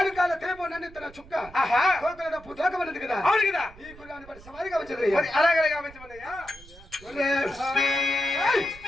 కాళ్ళ తేపో నన్ను చుక్క కోకల పుతకమన్నది కదా. అవును కదా. ఈ కుర్రాని పని సవారిగా వచ్చిందయ్యా. అలాగే గావించమన్నయ్యా.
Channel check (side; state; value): right; noise; rumble, 21 dB below the sound